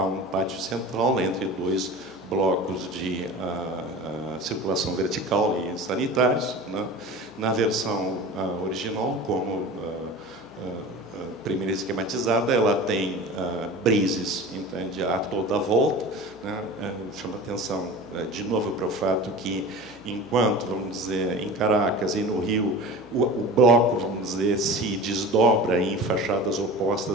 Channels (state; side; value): noise; right; hum, 29 dB below the sound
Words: pátio central entre 2 blocos de circulação vertical e sanitários, né? Na versão original, como primeira esquematizada, ela tem brises, entende, a toda a volta, né? Chama atenção de novo para o fato que, enquanto, vamos dizer, em Caracas e no Rio, o bloco, vamos dizer, se desdobra em fachadas